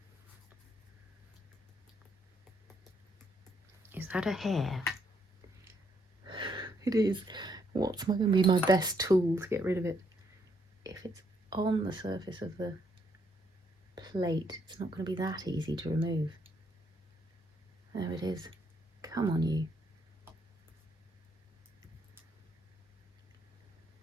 Is that a hair? It is. What's going to be my best tool to get rid of it? If it's on the surface of the plate, it's not going to be that easy to remove. There it is. Come on, you.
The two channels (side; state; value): both; normal; correlation 0.72